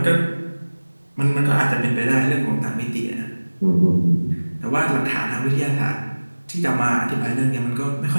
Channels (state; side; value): inverted; both; correlation -1.00